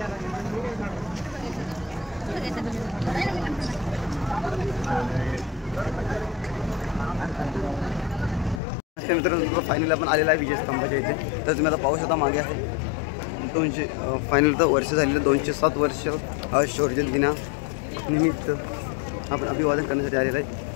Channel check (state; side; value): drops out; right; at 8.6 s